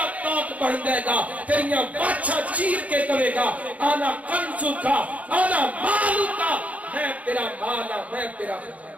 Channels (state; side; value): late; left; 0.069 ms